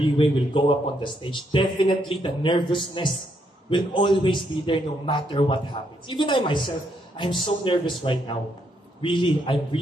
will go up on the stage, definitely the nervousness will always be there no matter what happens. Even I myself, I'm so nervous right now. Really, I'm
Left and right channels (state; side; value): normal; both; correlation 0.75